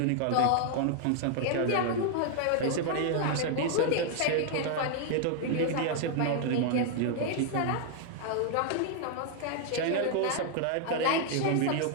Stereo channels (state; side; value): different; both; correlation 0.00